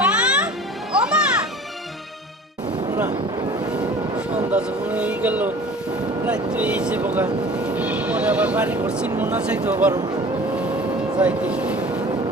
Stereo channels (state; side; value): normal; both; correlation 0.44